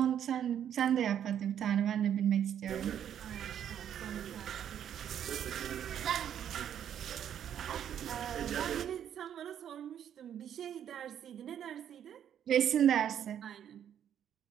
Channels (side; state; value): left; quieter; 9.6 dB